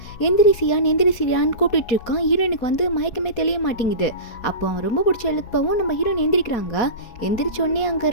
எந்திரிசியான்னு கூப்பிட்டு இருக்கான். ஹீரோயினுக்கு வந்து மயக்கமே தெரிய மாட்டேங்குது. அப்போ அவன் ரொம்ப பிடிச்ச எழுப்பவும் நம்ம ஹீரோயின் எந்திரிக்கிறாங்க. எந்திரிச்சோடனே அங்கே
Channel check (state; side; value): late; right; 4.2 ms